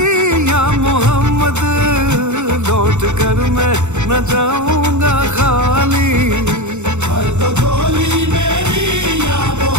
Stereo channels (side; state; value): left; late; 0.83 ms